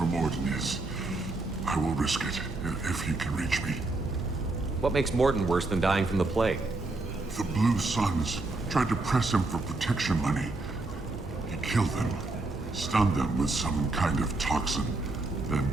Morton is, I will risk it if he can reach me. What makes Morton worse than dying from the plague? The Blue Suns tried to press him for protection money. He killed them, stunned them with some kind of toxin, then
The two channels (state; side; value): quieter; left; 3.1 dB